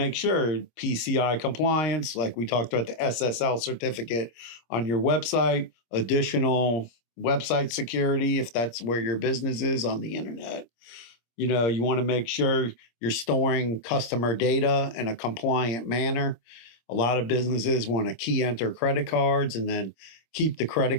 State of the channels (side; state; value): right; late; 26 ms